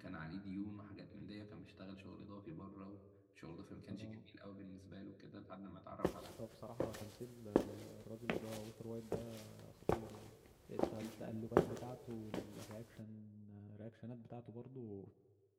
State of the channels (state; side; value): identical; both; correlation 1.00